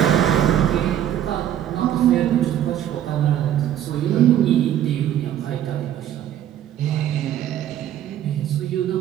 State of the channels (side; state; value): left; quieter; 11.1 dB